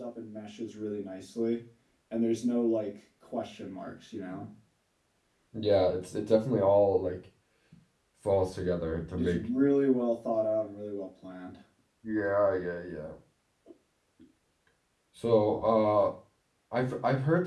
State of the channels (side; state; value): both; identical; correlation 1.00